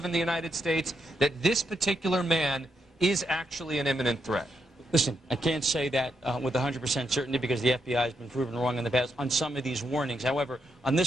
in the United States, that this particular man is actually an imminent threat. Listen, I can't say that with 100% certainty because the FBI has been proven wrong in the past on some of these warnings. However, on this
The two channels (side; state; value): both; normal; correlation 0.80